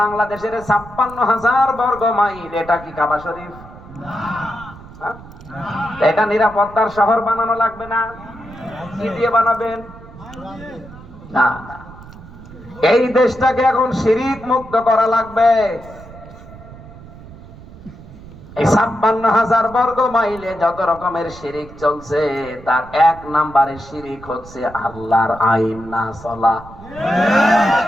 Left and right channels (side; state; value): right; noise; rumble, 18 dB below the sound